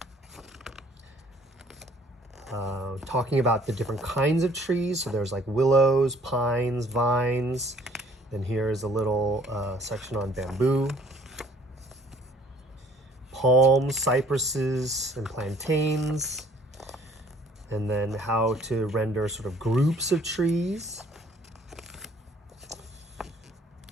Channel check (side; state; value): both; normal; correlation 0.58